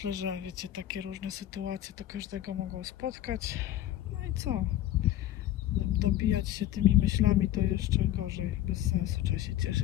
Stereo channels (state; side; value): quieter; right; 13.3 dB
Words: że wiecie, takie różne sytuacje to każdego mogą spotkać. No i co? Dobijać się tymi myślami to jeszcze gorzej, bez sensu, trzeba się